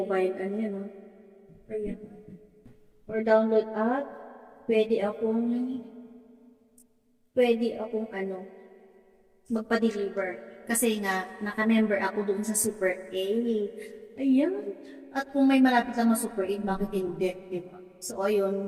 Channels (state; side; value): identical; both; correlation 1.00